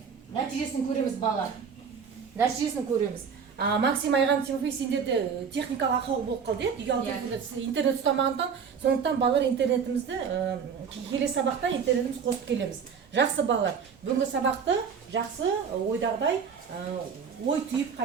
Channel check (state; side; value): quieter; left; 6.5 dB